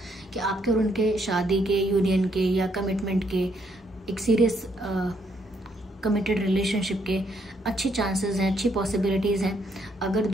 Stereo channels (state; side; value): normal; both; correlation 0.72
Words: कि आपके और उनके शादी के, यूनियन के या कमिटमेंट के एक सीरियस कमिटेड रिलेशनशिप के अच्छे चांसेस हैं, अच्छी पॉसिबिलिटीज़ हैं, अगर